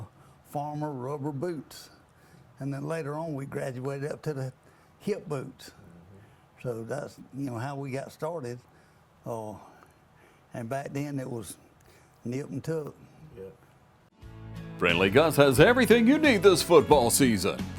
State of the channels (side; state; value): both; identical; correlation 1.00